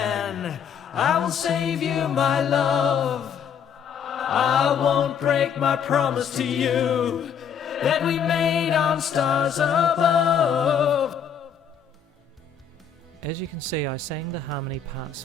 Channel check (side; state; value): right; quieter; 7.3 dB